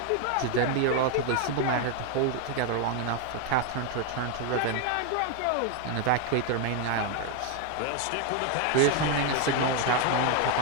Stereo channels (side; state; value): both; different; correlation 0.01